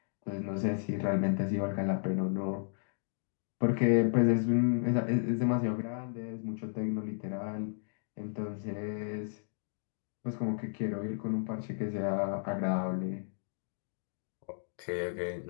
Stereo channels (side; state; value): right; silent; digital silence